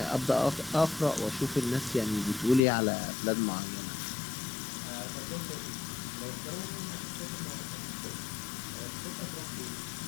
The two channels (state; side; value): drops out; right; at 2.6 s